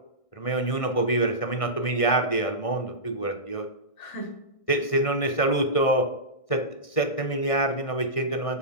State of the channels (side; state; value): right; late; 1.6 ms